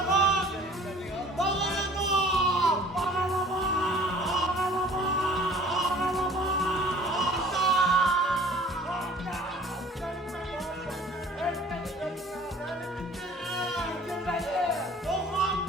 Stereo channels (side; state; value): both; normal; correlation 0.50